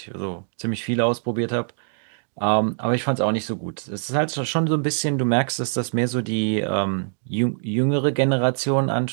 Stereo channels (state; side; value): silent; left; digital silence